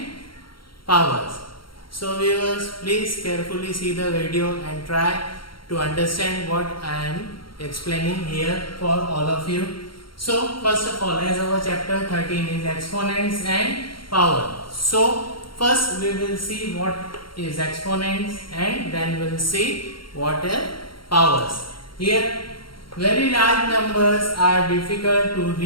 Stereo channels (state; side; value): late; right; 0.73 ms